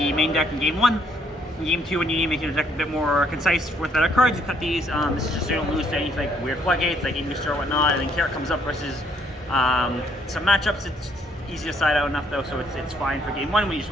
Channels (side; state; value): both; normal; correlation 0.68